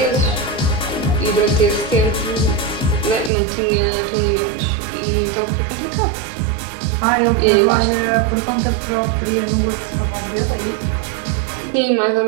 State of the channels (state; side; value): drops out; left; at 3.3 s